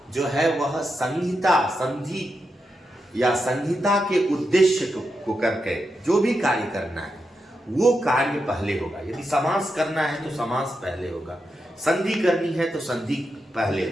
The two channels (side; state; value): both; normal; correlation 0.86